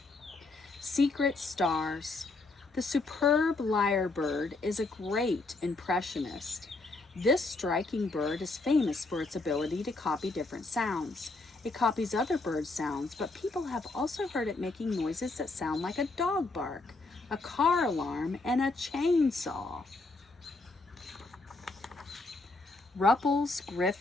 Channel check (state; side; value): quieter; right; 3.3 dB